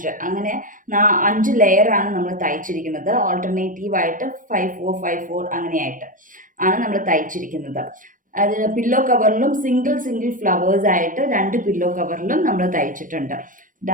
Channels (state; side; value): late; left; 0.38 ms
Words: അങ്ങനെ 5 ലെയറാണ് നമ്മൾ തയ്ച്ചിരിക്കുന്നത്. ഓൾട്ടർനേറ്റീവായിട്ട് 5, 4, 5, 4 അങ്ങനെയായിട്ട് ആണ് നമ്മൾ തയ്ച്ചിരിക്കുന്നത്. അത് പില്ലോ കവറിലും സിംഗിൾ ഫ്ലവേഴ്സ് ആയിട്ട് 2 പില്ലോ കവറിലും നമ്മൾ തയ്ച്ചിട്ടുണ്ട്.